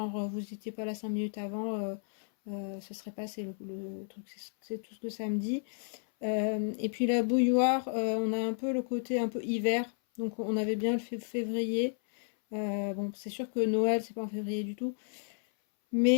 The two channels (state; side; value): silent; right; 56 dB below the other